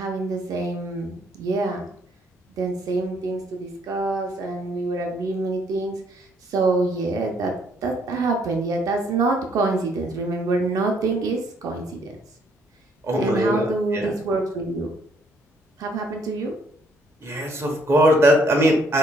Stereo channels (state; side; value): normal; both; correlation 0.67